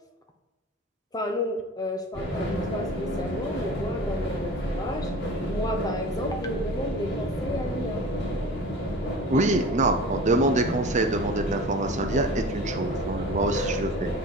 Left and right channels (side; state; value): both; normal; correlation 0.38